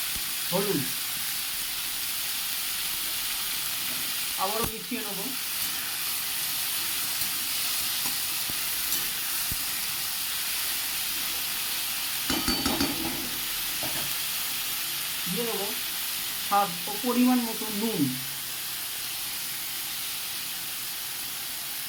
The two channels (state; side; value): identical; both; correlation 1.00